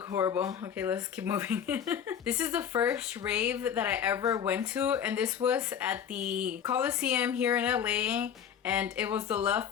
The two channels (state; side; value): quieter; right; 8.4 dB